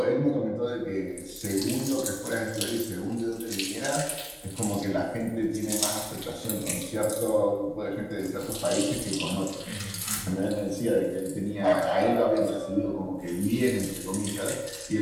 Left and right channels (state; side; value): identical; both; correlation 1.00